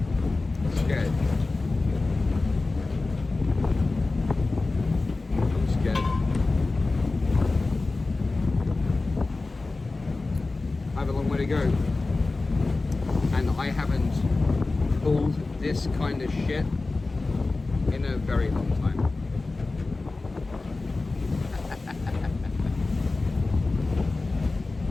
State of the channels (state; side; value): quieter; right; 3.4 dB